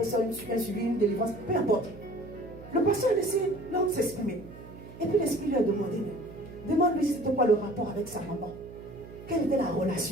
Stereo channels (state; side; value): noise; right; hum, 16 dB below the sound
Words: ça un suivi, une délivrance, peu importe. Le pasteur a laissé l'homme s'exprimer. Et puis l'esprit lui a demandé, demande-lui c'était quoi le rapport avec sa maman. Quelle était la